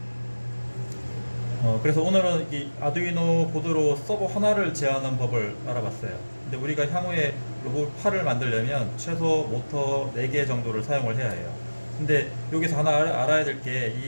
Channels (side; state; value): both; inverted; correlation -1.00